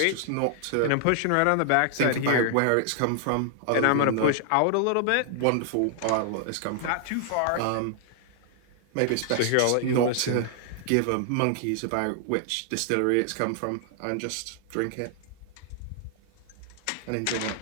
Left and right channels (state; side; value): different; both; correlation 0.00